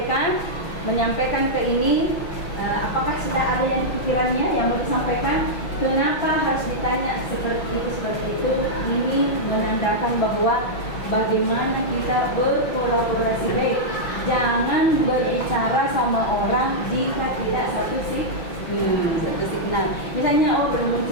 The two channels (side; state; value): right; late; 5.9 ms